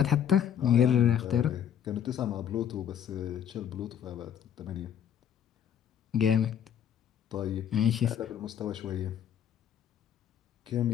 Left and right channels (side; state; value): right; quieter; 9.3 dB